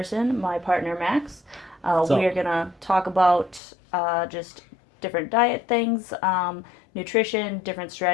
my partner Max. We So, are going to talk about just different diet things, nutrition, different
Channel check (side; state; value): right; drops out; at 3.6 s